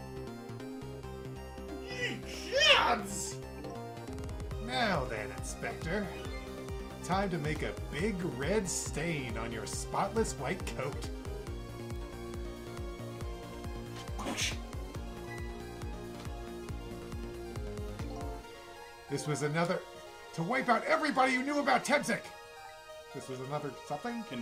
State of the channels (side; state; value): both; identical; correlation 1.00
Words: Ye gods! Now then, Inspector. time to make a big red stain on your spotless white coat. This was another... to wipe out everybody who knew about Tebzik! This was another something?